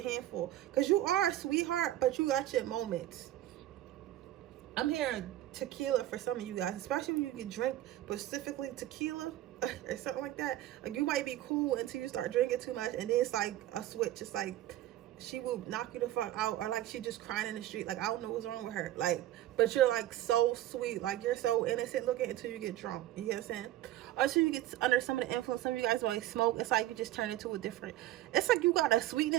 handful, because you are a sweetheart, but you got your moments. I'm hearing tequila for some of you guys, especially when you can drink specifically tequila or something like that. Like you might be cool until you start drinking too much, and then it's like a switch. It's like she will knock you the fuck out, or like she just crying in the street. Like I don't know what's wrong with her. Like, but you're like so sweet, like you're so innocent looking until you get drunk. You get what I'm saying? Or until you get under some of the influence. Some of you guys like smoke. It's like you just turn into a different. It's like you got a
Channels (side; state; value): left; quieter; 14.1 dB